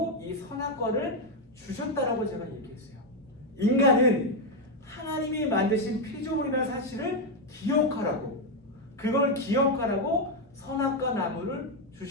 이 선악과를 주셨다라고 제가 얘기했어요. 인간은 하나님이 만드신 피조물이라는 사실을 기억하라고, 그걸 기억하라고 선악과 나무를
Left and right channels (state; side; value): normal; both; correlation 0.04